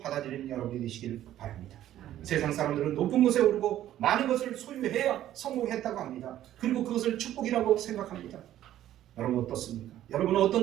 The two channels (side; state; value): left; quieter; 12.6 dB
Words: 여러분이 되시길 바랍니다. 세상 사람들은 높은 곳에 오르고 많은 것을 소유해야 성공했다고 합니다. 그리고 그것을 축복이라고 생각합니다. 여러분 어떻습니까? 여러분은